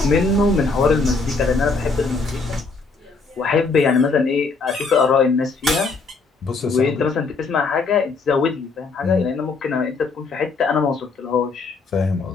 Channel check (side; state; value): right; quieter; 4.2 dB